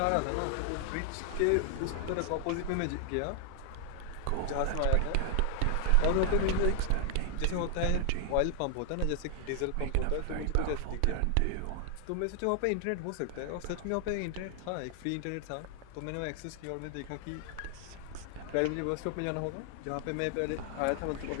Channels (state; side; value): different; both; correlation 0.00